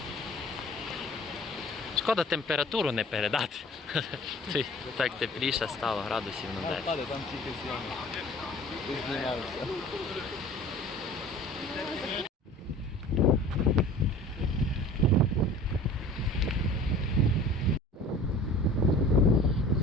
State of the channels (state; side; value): normal; both; correlation 0.44